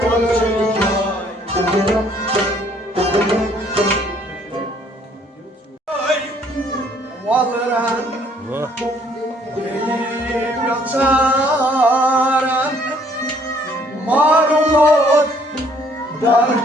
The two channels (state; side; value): normal; both; correlation 0.63